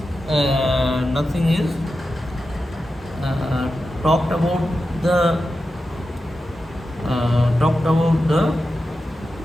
talked about the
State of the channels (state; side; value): normal; both; correlation 0.91